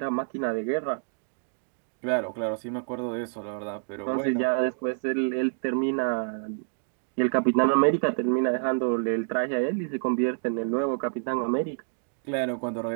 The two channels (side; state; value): left; silent; digital silence